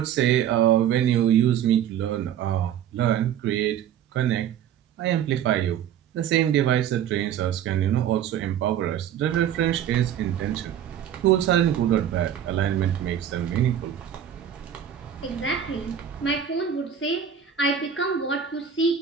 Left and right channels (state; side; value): quieter; left; 9.5 dB